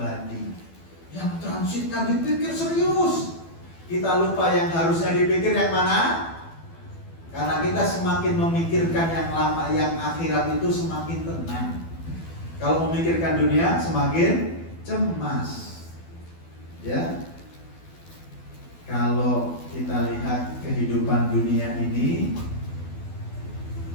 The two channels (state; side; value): late; right; 12 ms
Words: Yang transitnya dipikir serius, kita lupa yang harusnya dipikir yang mana. Karena kita semakin memikirkan yang lama, yang akhirat itu semakin tenang. Kalau memikirkan dunia semakin cemas. Ya. Kalau kita lihat kehidupan dunia ini,